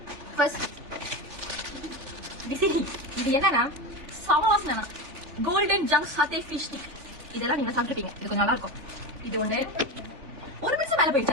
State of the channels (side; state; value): left; late; 3.3 ms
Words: ஃபர்ஸ்ட் இது என்னன்னா சவாஸ்னா golden junk satay fish stick. இதெல்லாம் நீங்க சாப்பிட்டுருப்பீங்க. இது கொஞ்சம் நல்லா இருக்கும். இது ஒண்ணு ஒரு நிமிஷம் மேல